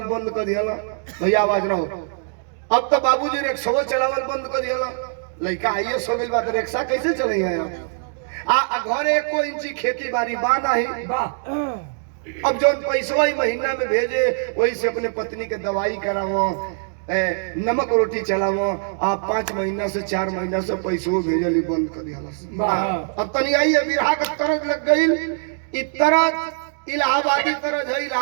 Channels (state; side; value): silent; left; digital silence